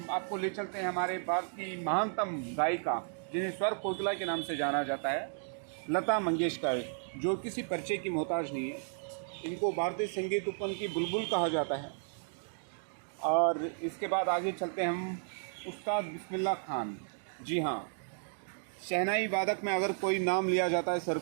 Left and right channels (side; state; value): left; silent; digital silence